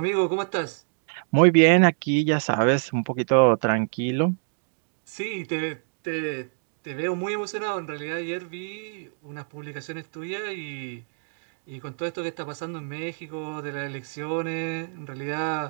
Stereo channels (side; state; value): left; silent; digital silence